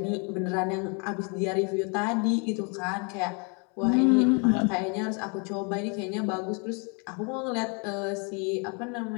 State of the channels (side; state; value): right; quieter; 35.1 dB